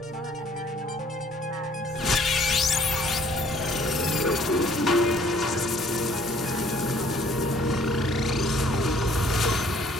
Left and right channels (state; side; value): normal; both; correlation 0.59